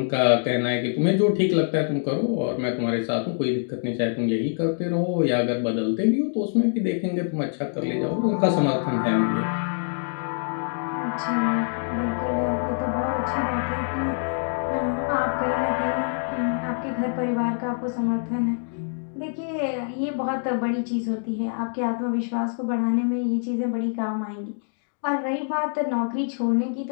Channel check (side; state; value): right; silent; digital silence